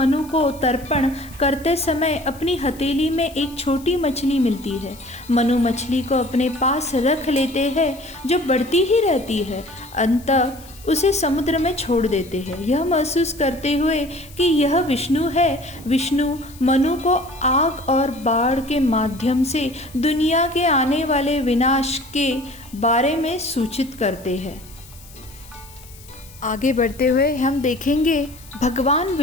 को तर्पण करते समय अपनी हथेली में एक छोटी मछली मिलती है। मनु मछली को अपने पास रख लेते हैं, जो बढ़ती ही रहती है। अंततः उसे समुद्र में छोड़ देते हैं, यह महसूस करते हुए कि यह विष्णु है। विष्णु मनु को आग और बाढ़ के माध्यम से दुनिया के आने वाले विनाश के बारे में सूचित करते हैं। आगे बढ़ते हुए हम देखेंगे भगवान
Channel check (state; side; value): noise; left; hiss, 22 dB below the sound